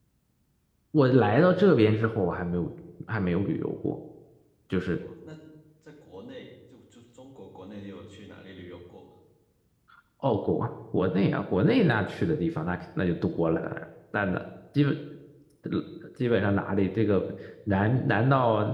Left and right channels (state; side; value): identical; both; correlation 1.00